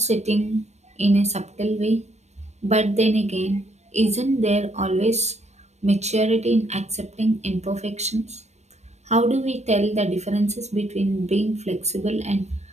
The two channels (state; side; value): late; left; 0.32 ms